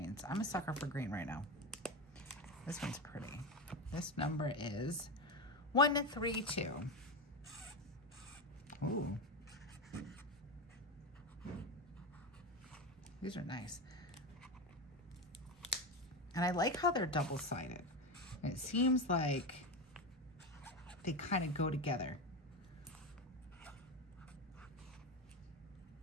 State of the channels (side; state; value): both; normal; correlation 0.18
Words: I'm a sucker for green right now. This one's pretty. This number is 132. Ooh. These are nice. And I like how they're double-sided. It seems like they kind of go together.